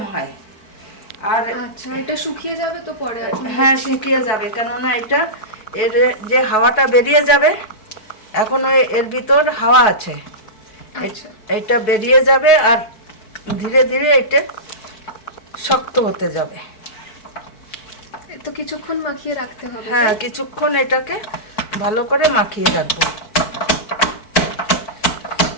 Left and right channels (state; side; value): late; right; 4.6 ms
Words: হয়। আর আচ্ছা, এটা শুকিয়ে যাবে তো পরে? হ্যাঁ, শুকিয়ে যাবে, কেননা এটা এর যে হাওয়াটা বেরিয়ে যাবে, এখন এর ভিতর হাওয়া আছে। আচ্ছা, এটা বেরিয়ে যাবে আর ধীরে ধীরে এটা শক্ত হতে যাবে। তো কিছুক্ষণ মাখিয়ে রাখতে হবে। হ্যাঁ, কিছুক্ষণ এটাকে ভালো করে মাখিয়ে রাখবো।